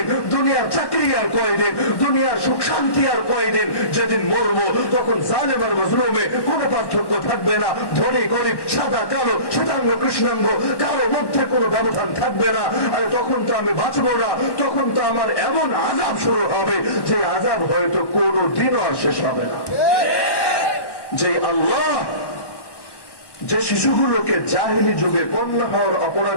দুনিয়ার চাকরি আর কয়দিন, দুনিয়ার সুখ শান্তি আর কয়দিন। যেদিন মরবো তখন জালেম আর মজলুমে কোনো পার্থক্য থাকবে না। ধনী গরিব, সাদা কালো, শ্বেতাঙ্গ কৃষ্ণাঙ্গ, কারো মধ্যে কোনো ব্যবধান থাকবে না। আর তখন তো আমি বাঁচবো না, তখন তো আমার এমন আযাব শুরু হবে যে আযাব হয়তো কোনো দিনও আর শেষ হবে না। যে আল্লাহ যে শিশুগুলোকে জাহেলি যুগে কন্যা হওয়ার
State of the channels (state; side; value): late; right; 1.1 ms